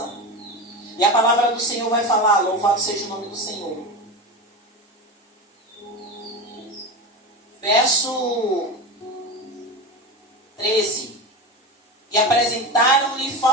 E a palavra do Senhor vai falar: louvado seja o nome do Senhor. Verso 13. E apresentaram-lhe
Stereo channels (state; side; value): normal; both; correlation 0.21